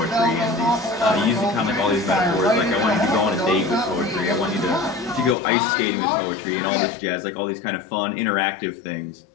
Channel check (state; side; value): drops out; right; at 5.4 s